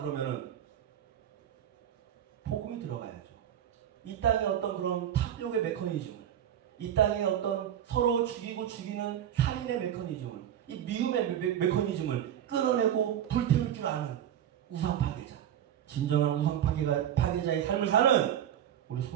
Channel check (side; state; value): left; quieter; 10.2 dB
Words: 복음이 들어가야죠. 이 땅의 어떤 그런 탑력의 메커니즘을, 이 땅의 어떤 서로 죽이고 죽이는 살인의 메커니즘을, 이 미움의 메커니즘을 끌어내고 불태울 줄 아는 우상 파괴자, 진정한 우상 파괴자의 삶을 사는 우리